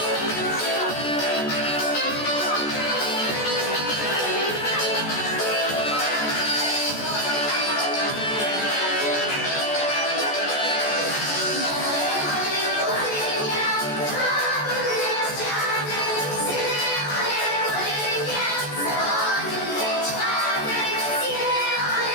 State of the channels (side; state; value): right; late; 14 ms